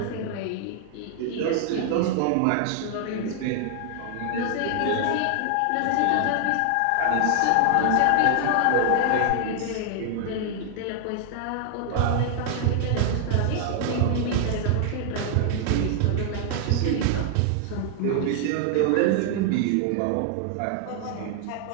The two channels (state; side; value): different; both; correlation 0.00